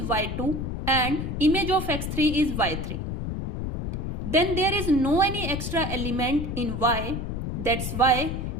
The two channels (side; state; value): left; noise; rumble, 3 dB below the sound